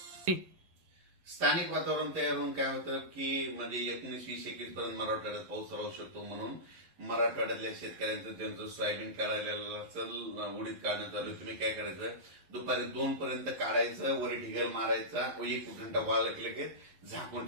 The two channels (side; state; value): left; late; 11 ms